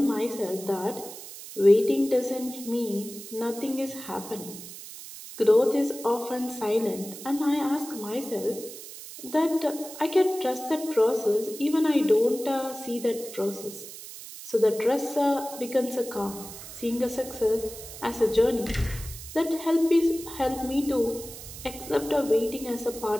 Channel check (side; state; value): right; noise; hiss, 13 dB below the sound